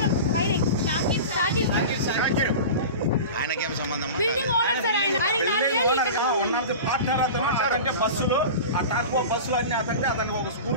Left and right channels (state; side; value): inverted; both; correlation -0.31